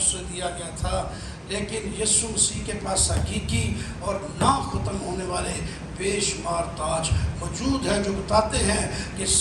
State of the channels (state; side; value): identical; both; correlation 1.00